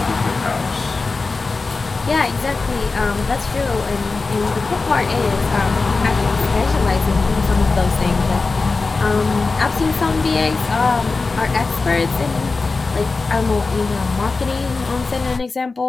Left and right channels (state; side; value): quieter; right; 4.0 dB